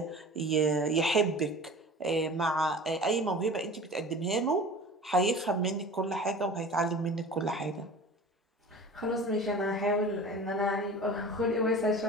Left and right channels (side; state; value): both; normal; correlation 0.39